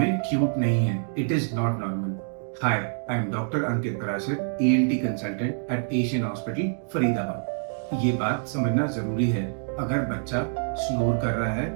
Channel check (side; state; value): left; silent; digital silence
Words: क्यूट नहीं है। It is not normal. Hi, I am doctor Ankit Parashar, ENT consultant eight Asian hospital Faridabad. ये बात समझना जरूरी है। अगर बच्चा स्नोर कर रहा है